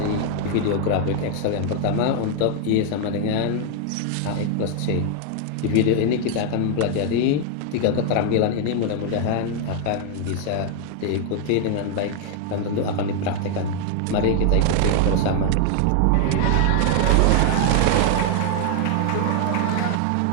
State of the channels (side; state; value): both; different; correlation 0.00